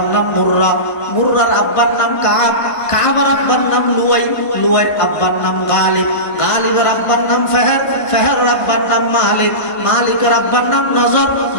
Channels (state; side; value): late; right; 1.5 ms